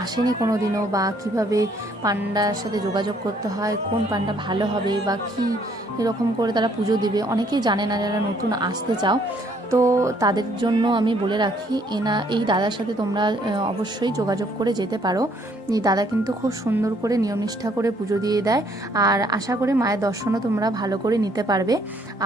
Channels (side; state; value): both; normal; correlation 0.65